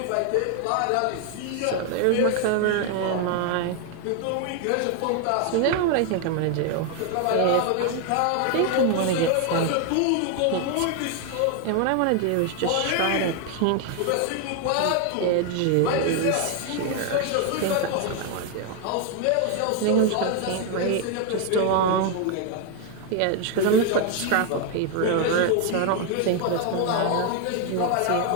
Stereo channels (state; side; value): different; both; correlation 0.00